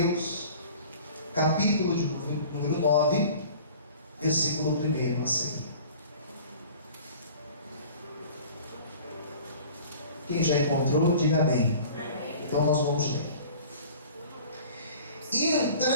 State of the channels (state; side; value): inverted; both; correlation -0.45